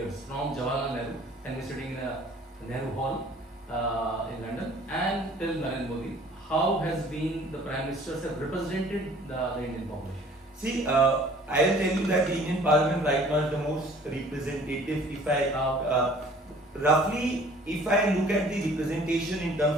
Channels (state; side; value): normal; both; correlation 0.52